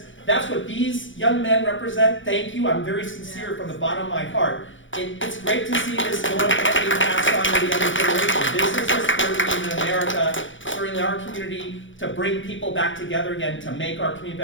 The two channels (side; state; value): right; late; 0.56 ms